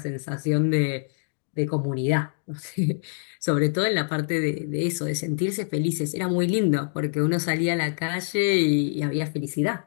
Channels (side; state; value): right; silent; digital silence